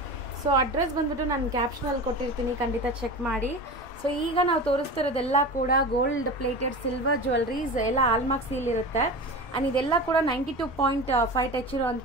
So address ಬಂದ್ಬಿಟ್ಟು ನಾನು ಕ್ಯಾಪ್ಷನಲ್ಲಿ ಕೊಟ್ಟಿರ್ತೀನಿ, ಖಂಡಿತ ಚೆಕ್ ಮಾಡಿ. ಸೊ ಈಗ ನಾವು ತೋರಿಸ್ತಿರೋದೆಲ್ಲ ಕೂಡ ಗೋಲ್ಡ್ ಪ್ಲೇಟೆಡ್ ಸಿಲ್ವರ್ ಜ್ಯುವೆಲ್ಲರೀಸ್, ಎಲ್ಲ ಆಲ್ಮಾರ್ಕ್ ಸೀಲ್ ಇರುತ್ತೆ. ಆ್ಯಂಡ್ ಇದೆಲ್ಲ ಕೂಡ 92.5 ಟಚ್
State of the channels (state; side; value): normal; both; correlation 0.30